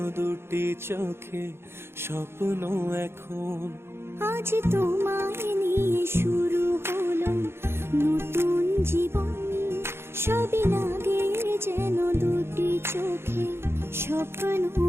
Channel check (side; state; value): left; late; 0.12 ms